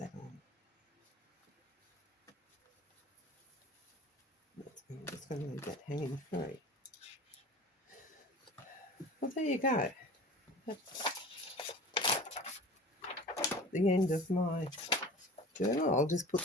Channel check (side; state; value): both; normal; correlation 0.40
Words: on. I'm just going to leave that hanging free. Well, there you go. That's the end of my journal. I'll just put